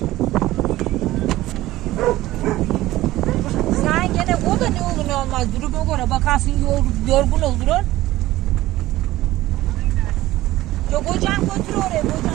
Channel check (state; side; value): quieter; left; 16.4 dB